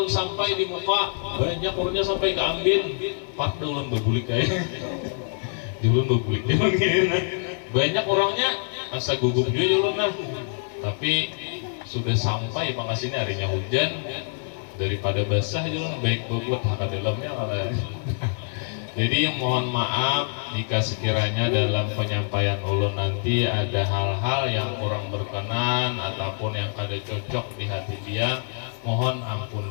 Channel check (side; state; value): right; silent; 62 dB below the other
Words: sampai di muka banyak orangnya sampai keambil Pak ulun bebulik kayak. Ulun bebulik banyak orangnya asa gugup juga ulun lah. Tapi sudah sampai pengasihnya harinya hujan, daripada basah ulun baik bobot hak dalamnya malah. Jadi mohon maaf jika sekiranya dalam penyampaian ulun nanti ada hal-hal yang kurang berkenan ataupun yang kada cocok di hati dia, mohon ampun